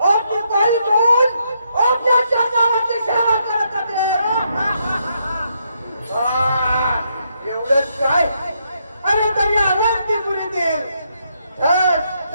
पायी घेऊन आपल्या चरणावरती सेवा करत होते. एवढंच काय? अरे तरी अवंतीपुरीतील धन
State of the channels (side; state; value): both; inverted; correlation -0.77